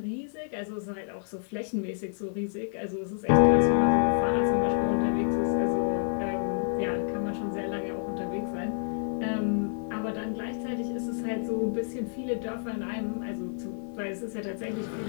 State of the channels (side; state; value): right; silent; digital silence